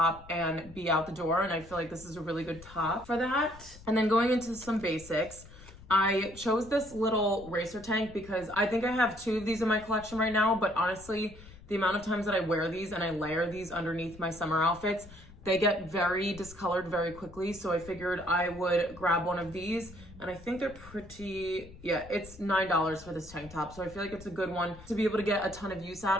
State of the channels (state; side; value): noise; left; rumble, 19 dB below the sound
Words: and be out the door. And I feel like this is a really good top for that. And then going into some basics, I chose this little racer tank because I think I have 2 of these in my collection right now, but honestly, the amount of times that I wear these and I layer these underneath my summer outfits, they get very discolored very quickly. So I figured I would grab one of these and I think they're pretty, yeah, it's $9 for this tank top. So I feel like it's a good one to be able to get a ton of use